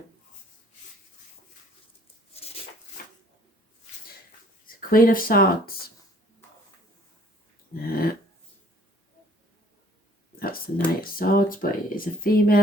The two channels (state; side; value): normal; both; correlation 0.56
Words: It's the Queen of Swords. That's the Knight of Swords, but it is a